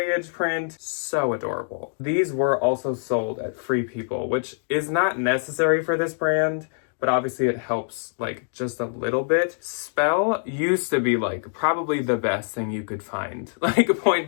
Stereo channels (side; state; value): right; silent; digital silence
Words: print. So adorable. These were also sold at Free People, which is not necessary for this brand, but obviously it helps like just a little bit. Spell used to be like probably the best thing you could find, like point